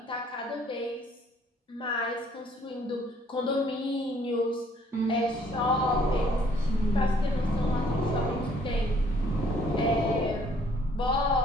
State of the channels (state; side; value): normal; both; correlation 0.62